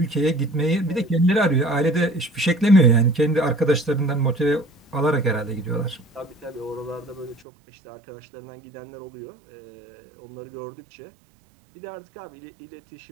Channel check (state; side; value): drops out; left; at 7.4 s